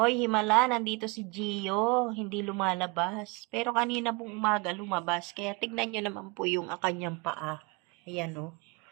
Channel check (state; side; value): quieter; left; 28.1 dB